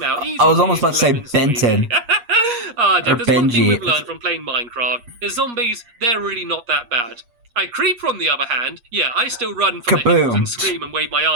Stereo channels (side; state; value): left; late; 8.4 ms